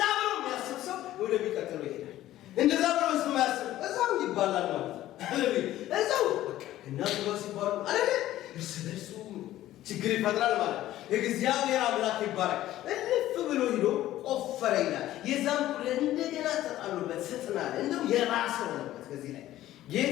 ብሎ የሚያስብ ሰው ወደሚቀጥለው ይሄዳል። እንደዛ ብሎ የማያስብ እዛው ይባላል ማለት ነው። ሃሌሉያ! እዛው በቃ እናቱ ጋር ሲባሉ አይደል እርስ በርሱ ችግር ይፈጥራል ማለት ነው። እግዚአብሔር አምላክ ይባረክ። እልፍ ብሎ ሂዶ ቆፈረ ይላል። የዛን ሁሉ እንደገና ተጣሉበት፣ ስጥናል። እንደው የባሰ ሆነበት። ከዚህ ላይ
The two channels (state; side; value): quieter; right; 14.2 dB